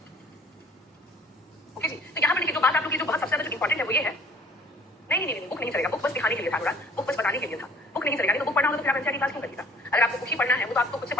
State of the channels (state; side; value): normal; both; correlation 0.53